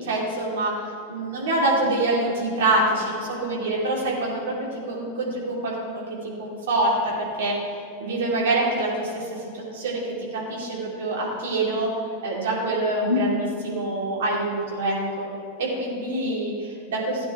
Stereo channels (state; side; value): normal; both; correlation -0.15